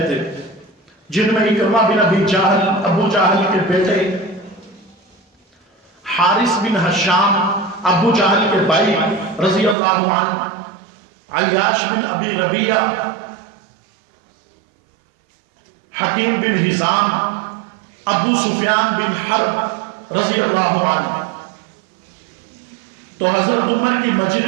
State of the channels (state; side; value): drops out; left; at 9.8 s